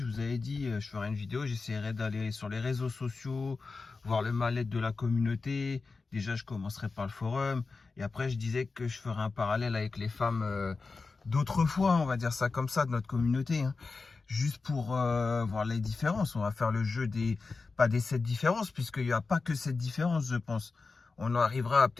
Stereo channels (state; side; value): quieter; right; 4.2 dB